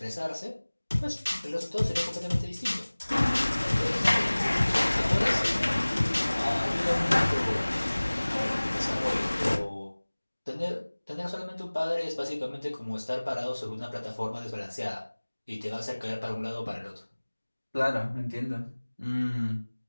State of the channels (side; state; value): both; inverted; correlation -1.00